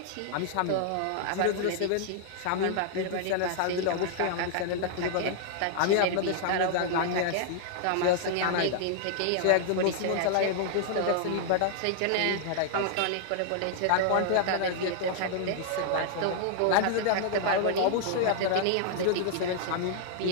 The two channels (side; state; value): both; different; correlation -0.01